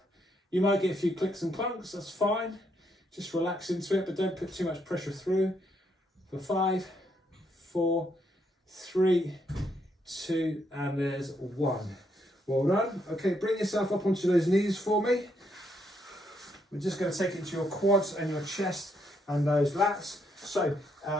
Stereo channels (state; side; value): normal; both; correlation 0.75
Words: You might get a few clicks and clunks, that's fine. Just relax into it, but don't put too much pressure through. For 5, 4, 3, 2, and there's 1. Well done. Okay, bring yourself up onto those knees for me. We're just going to take it to your quads and your chest and those lats. So